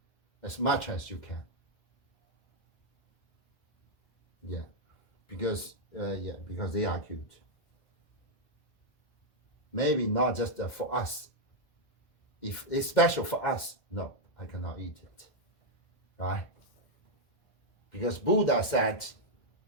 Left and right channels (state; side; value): late; right; 2.1 ms